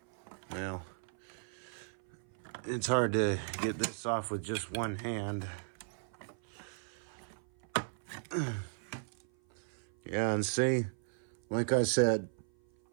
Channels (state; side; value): silent; left; 54 dB below the other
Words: it's hard to get this off with just one hand. Yeah, and see, like I said,